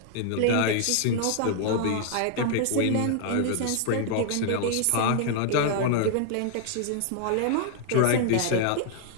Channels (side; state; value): both; different; correlation 0.00